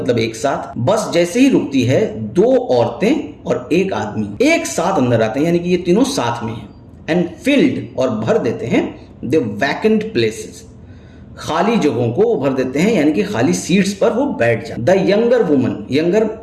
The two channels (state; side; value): identical; both; correlation 1.00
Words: एक साथ। बस जैसे ही रुकती है, 2 औरतें और एक आदमी एक साथ अंदर आते हैं, यानी कि ये तीनों साथ में हैं। एंड फिल्ड, और भर देते हैं, द वैकेंट प्लेसेस, खाली जगहों को वो भर देते हैं, यानी कि खाली सीट्स पर वो बैठ जाते। द यंगर वुमन, यंगर